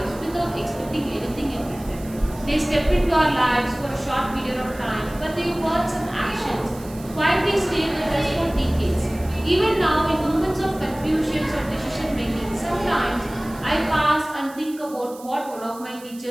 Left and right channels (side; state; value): right; noise; hiss, 20 dB below the sound